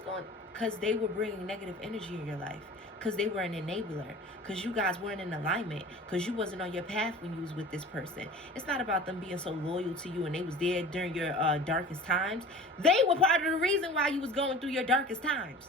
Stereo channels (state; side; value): normal; both; correlation 0.40